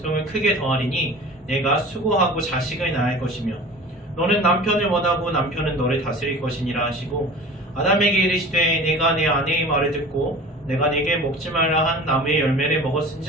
크게 더하리니 내가 수고하고 자식을 낳을 것이며 너는 남편을 원하고 남편은 너를 다스릴 것이니라 하시고 아담에게 이르시되 내가 내 아내의 말을 듣고 내가 네게 먹지 말라 한 나무의 열매를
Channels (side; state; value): both; normal; correlation 0.40